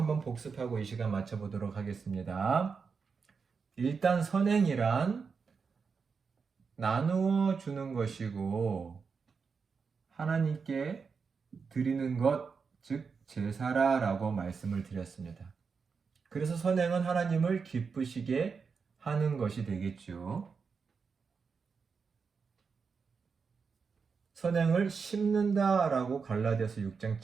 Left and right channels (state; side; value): quieter; left; 5.4 dB